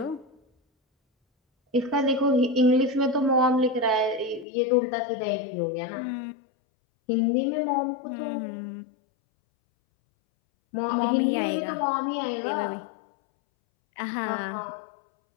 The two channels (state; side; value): drops out; right; at 4.5 s